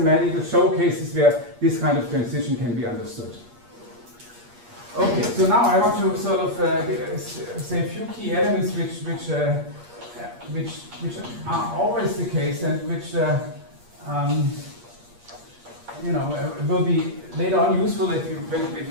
showcases where this kind of transition can be understood. Okay, so now I want to sort of say a few key elements which which are always the case, and which will be later on useful if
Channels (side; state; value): left; late; 8.5 ms